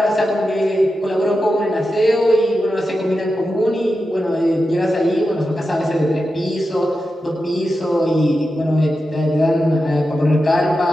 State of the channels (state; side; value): normal; both; correlation 0.90